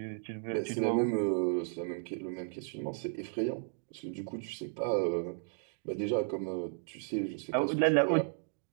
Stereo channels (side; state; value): left; silent; digital silence